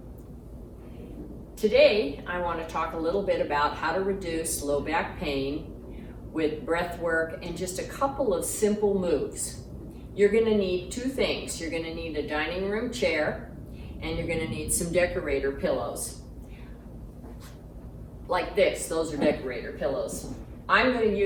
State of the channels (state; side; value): identical; both; correlation 1.00